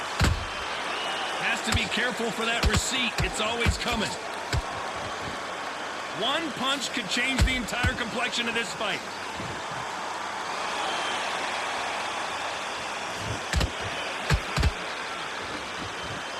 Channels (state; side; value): identical; both; correlation 1.00